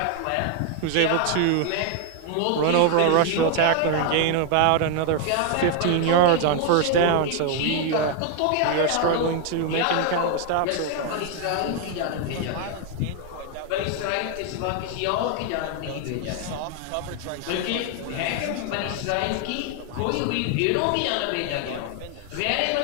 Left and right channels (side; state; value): both; different; correlation 0.00